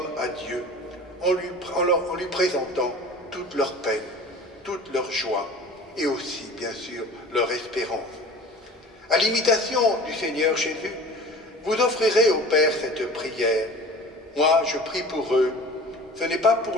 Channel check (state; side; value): normal; both; correlation 0.41